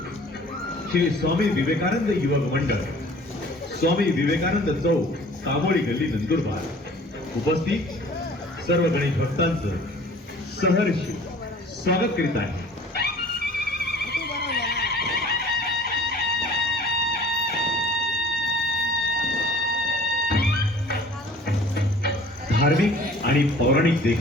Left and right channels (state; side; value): normal; both; correlation 0.49